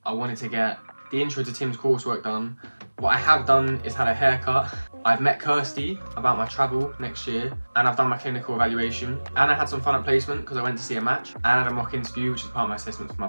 I wanted to get the intro to Tim's coursework done. What I have done is had a haircut. I've met Kirsty about my travel next year, and I've done my clinical evaluation, and I had some fun at placement because I went to see a match, and I had a mock interview, which is part of my assessment for my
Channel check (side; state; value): both; inverted; correlation -1.00